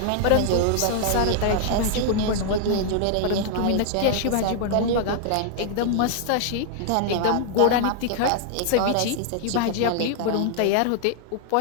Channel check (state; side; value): different; both; correlation -0.01